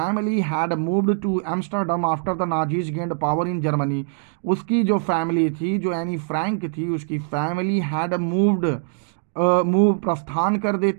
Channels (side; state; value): left; silent; digital silence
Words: had moved to Amsterdam after the Nazis gained power in Germany. उसकी जो फैमिली थी, जो Anne Frank थी, उसकी family had moved move प्रस्थान कर